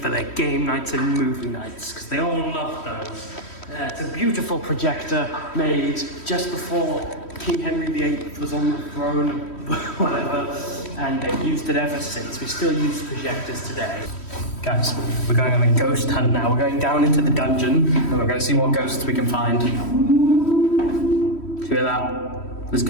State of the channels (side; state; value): right; late; 3.1 ms